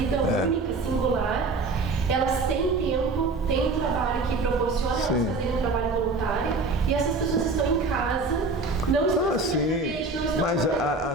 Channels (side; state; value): left; quieter; 3.5 dB